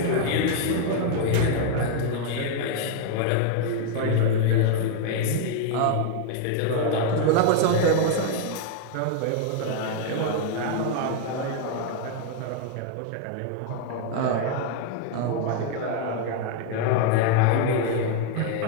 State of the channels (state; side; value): different; both; correlation 0.00